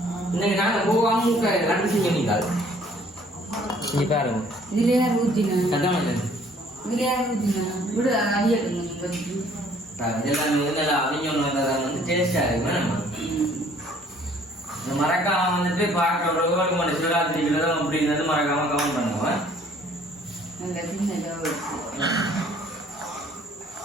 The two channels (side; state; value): both; normal; correlation 0.58